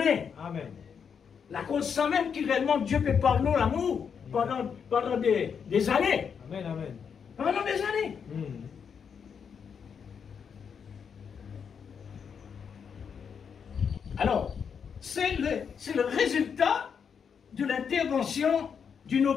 Amen. La cause sans même qui réellement Dieu peut par nous l'amour pendant des années. Amen. Amen. Pendant des années. Alors, c'est le résultat de l'intervention d'une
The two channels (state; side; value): quieter; right; 6.8 dB